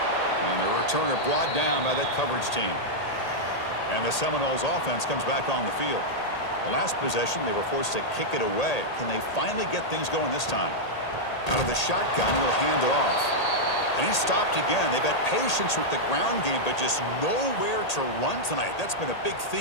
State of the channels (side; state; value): right; late; 1.8 ms